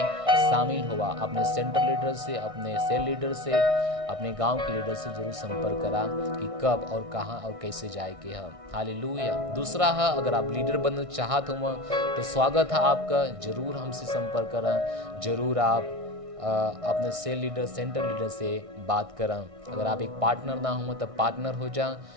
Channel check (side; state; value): left; late; 1.6 ms